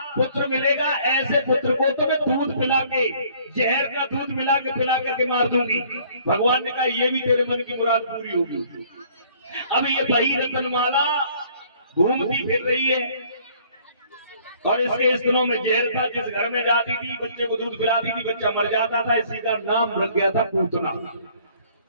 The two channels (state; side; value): inverted; both; correlation -0.58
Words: पुत्र मिलेगा, ऐसे पुत्र को तो मैं दूध पिला के, जहर का दूध मिला के पिला करके मार दूंगी। भगवान ने कहा ये भी तेरे मन की मुराद पूरी होगी। अब ये वही रतनमाला घूमती फिर रही है, और इसके स्तनों में जहर था, जिस घर में जाती थी बच्चे को दूध पिलाती थी, बच्चा मर जाता था, इसी का नाम रख गया था पूतना।